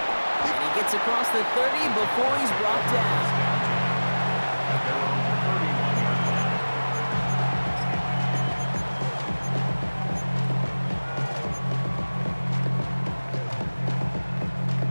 And he gets across the 30 before he's brought down.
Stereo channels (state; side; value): inverted; both; correlation -1.00